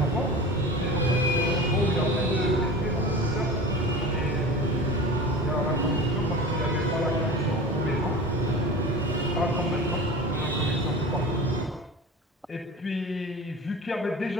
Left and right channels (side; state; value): both; normal; correlation 0.34